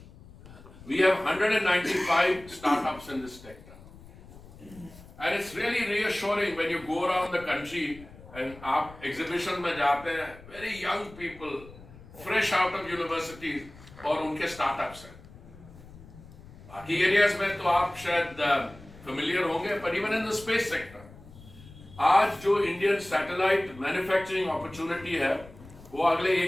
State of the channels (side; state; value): left; noise; rumble, 20 dB below the sound